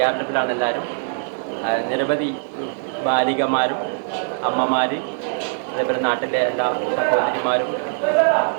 എല്ലാവരും. നിരവധി ബാലികമാരും അമ്മമാർ, അതേപോലെ നാട്ടിലെ എല്ലാ സഹോദരിമാരും,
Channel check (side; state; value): left; silent; digital silence